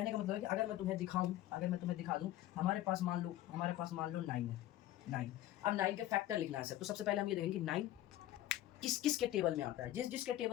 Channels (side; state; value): right; quieter; 14.1 dB